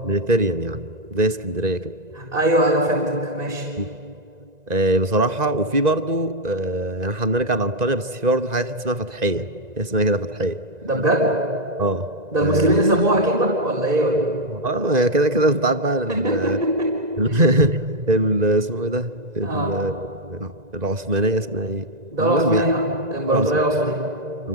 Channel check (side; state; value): left; late; 1.9 ms